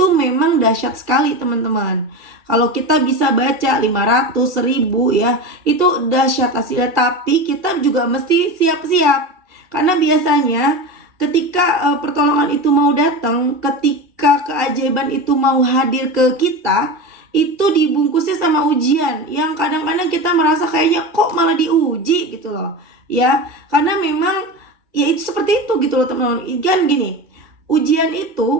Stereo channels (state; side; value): late; left; 2.3 ms